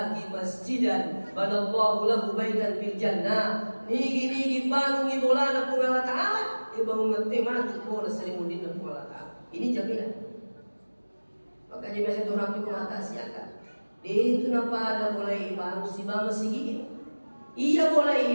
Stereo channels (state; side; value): inverted; both; correlation -1.00